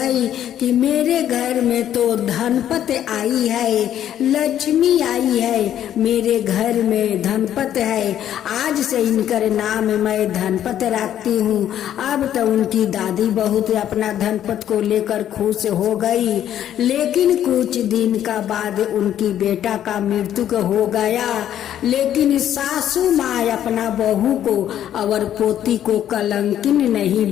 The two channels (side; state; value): right; quieter; 10.9 dB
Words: कि मेरे घर में तो धनपत आई है, लक्ष्मी आई है, मेरे घर में धनपत है। आज से इनकर नाम मैं धनपत रखती हूँ। अब तो उनकी दादी बहुत अपना धनपत को लेकर खुश हो गई। लेकिन कुछ दिन का बाद उनकी बेटा का मृत्यु हो गया। लेकिन सासू माँ अपना बहू को और पोती को कलंकिन नहीं